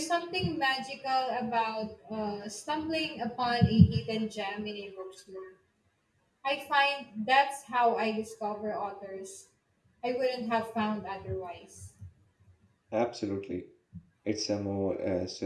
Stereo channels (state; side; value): identical; both; correlation 1.00